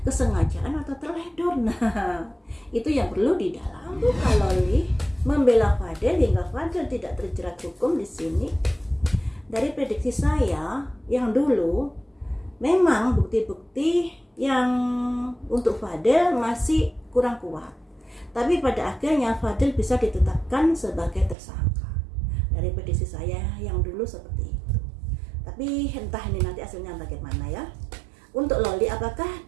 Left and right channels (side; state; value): left; drops out; at 21.4 s